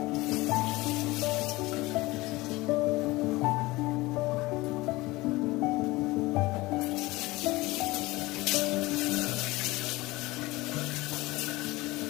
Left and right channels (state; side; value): quieter; right; 20.6 dB